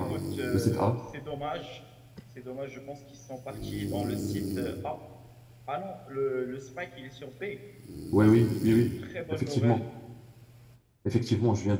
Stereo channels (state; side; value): identical; both; correlation 1.00